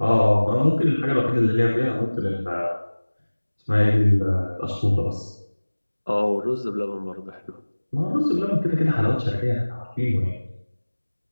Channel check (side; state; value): both; inverted; correlation -1.00